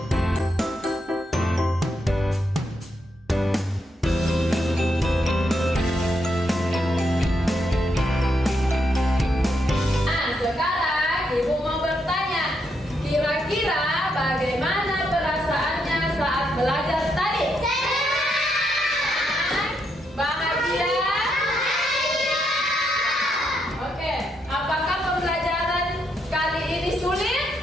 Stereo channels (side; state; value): both; normal; correlation 0.79